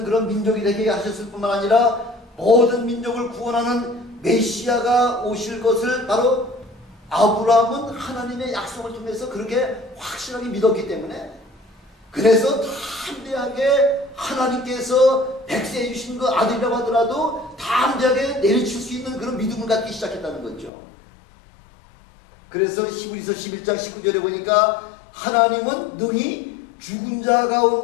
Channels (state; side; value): drops out; right; at 20.7 s